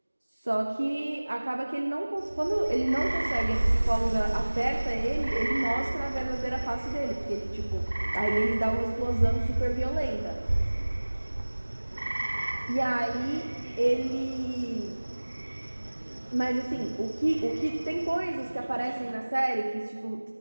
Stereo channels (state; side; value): inverted; both; correlation -1.00